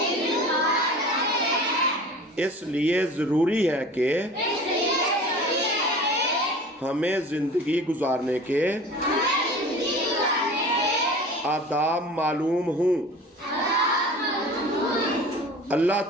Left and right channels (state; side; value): normal; both; correlation 0.40